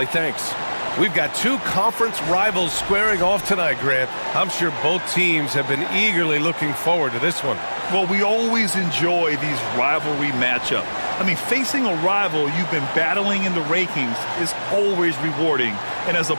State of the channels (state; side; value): inverted; both; correlation -1.00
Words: thanks. We've got two conference rivals squaring off tonight, Grant. I'm sure both teams have been eagerly looking forward to this one. Well, we always enjoy these rivalry matchups. I mean, facing a rival you've been battling in the rankings is always rewarding. And as a